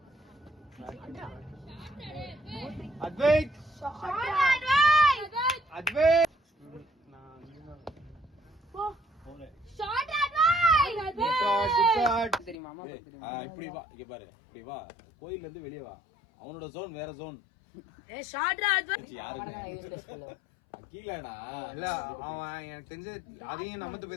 Advait Advait shot advice shot தெரியுமா இப்படி வா இங்க பாரு இப்படி வா கோயில்ல இருந்து வெளிய வா அவனோட ஜோன் வேற ஜோன் ஏய் ஷாட் அட்வைஸ் அகிலனா இல்ல அவன் எனக்கு தெரிஞ்ச அதையும் நமத்து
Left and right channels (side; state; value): right; drops out; at 12.6 s